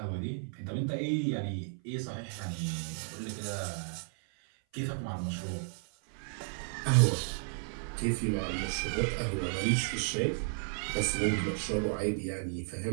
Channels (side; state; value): left; silent; 55 dB below the other